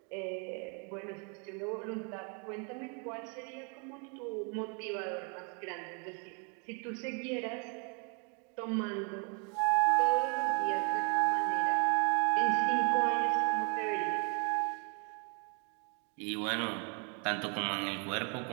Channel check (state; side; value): quieter; left; 36.5 dB